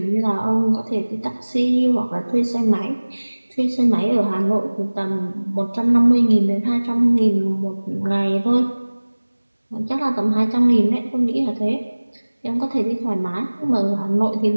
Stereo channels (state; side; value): inverted; both; correlation -1.00